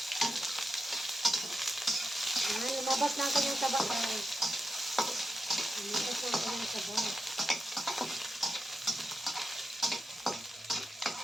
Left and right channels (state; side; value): normal; both; correlation 0.89